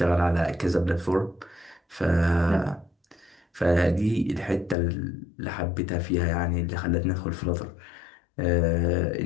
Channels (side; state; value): right; drops out; at 4.8 s